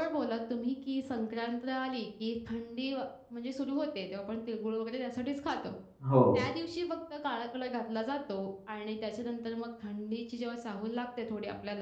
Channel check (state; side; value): identical; both; correlation 1.00